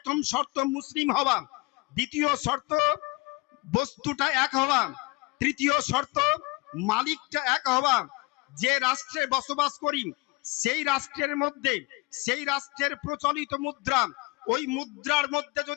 শর্ত মুসলিম হওয়া, দ্বিতীয় শর্ত বস্তুটা এক হওয়া, তৃতীয় শর্ত মালিকটা এক হওয়া। যে রাষ্ট্রে বসবাস করি সেই রাষ্ট্রের মধ্যে, সেই রাষ্ট্রের প্রচলিত মুদ্রা, ওই মুদ্রার মধ্যে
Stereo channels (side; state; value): right; quieter; 24.6 dB